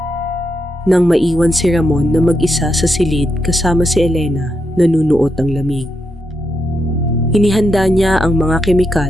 Nang maiwan si Ramon na mag-isa sa silid kasama si Elena, nanunuot ang lamig. Inihanda niya ang mga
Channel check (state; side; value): normal; both; correlation 0.83